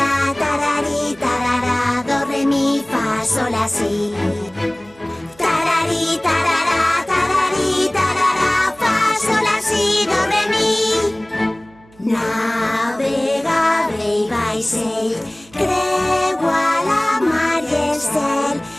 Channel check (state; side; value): noise; right; hum, 27 dB below the sound